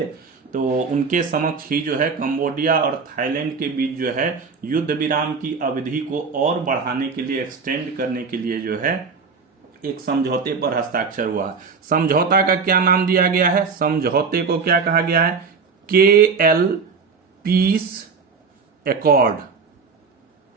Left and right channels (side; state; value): left; quieter; 5.2 dB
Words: तो उनके समक्ष ही जो है कंबोडिया और थाईलैंड के बीच जो है युद्ध विराम की अवधि को और बढ़ाने के लिए, एक्सटेंड करने के लिए जो है एक समझौते पर हस्ताक्षर हुआ। समझौता का क्या नाम दिया गया है? समझौते को क्या कहा गया है? KL peace accord.